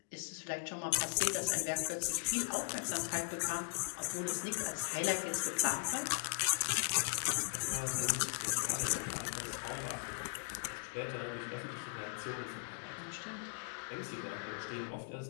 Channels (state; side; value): silent; right; digital silence